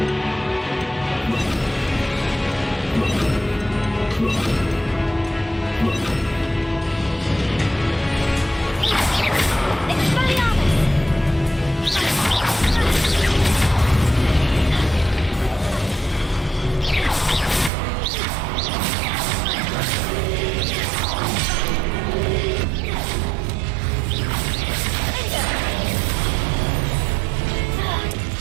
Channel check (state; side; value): drops out; left; at 17.7 s